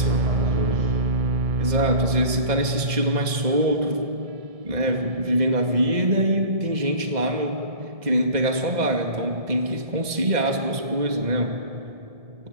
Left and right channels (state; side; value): late; left; 1.7 ms